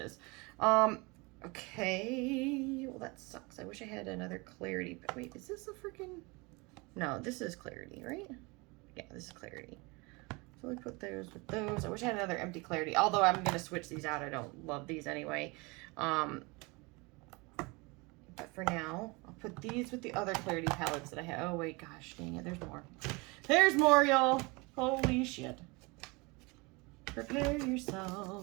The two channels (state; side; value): quieter; left; 26.6 dB